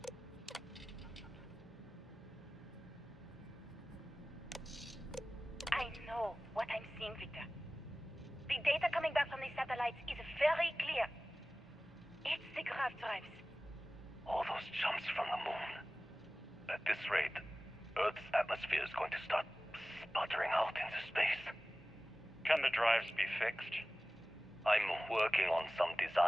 I know what I'm seeing, Victor. The data coming back from the satellites is very clear. It's the grav drives. All those jumps from the moon. At this rate, Earth's atmosphere is going to start sputtering out into space. Can the drives be fixed? I'm working on some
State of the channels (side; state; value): both; normal; correlation 0.97